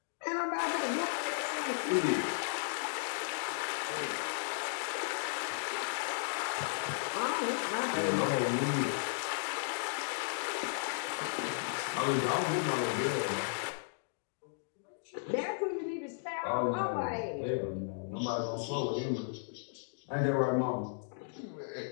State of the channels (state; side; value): silent; right; digital silence